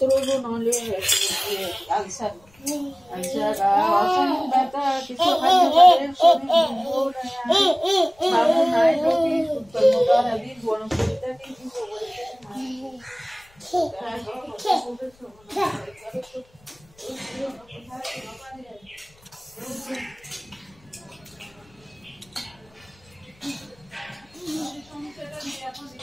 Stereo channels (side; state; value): left; noise; rumble, 30 dB below the sound